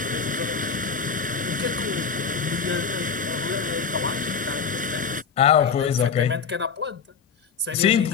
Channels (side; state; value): right; quieter; 6.0 dB